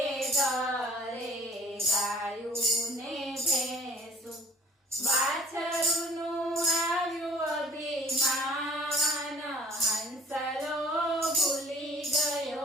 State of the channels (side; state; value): both; normal; correlation 0.52